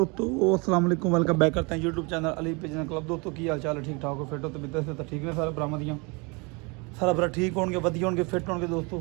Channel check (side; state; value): left; quieter; 29.4 dB